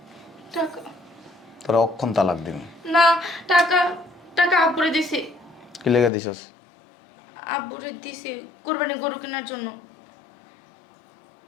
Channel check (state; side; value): drops out; right; at 6.1 s